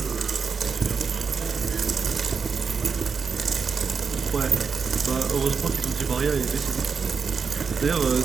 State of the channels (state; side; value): quieter; left; 5.6 dB